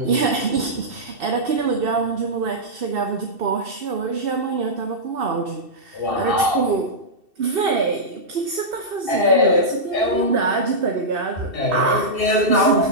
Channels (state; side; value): late; left; 2.7 ms